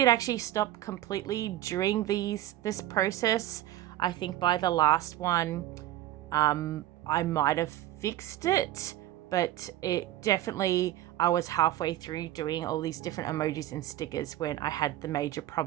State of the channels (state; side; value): quieter; left; 14.1 dB